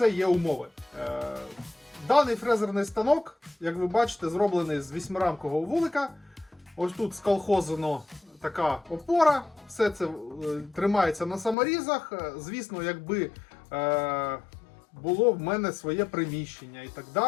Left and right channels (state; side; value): drops out; right; at 11.6 s